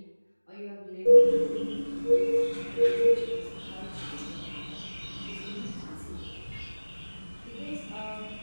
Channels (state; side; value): inverted; both; correlation -1.00